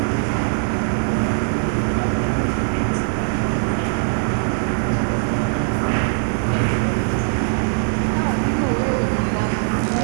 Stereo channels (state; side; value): silent; left; 64 dB below the other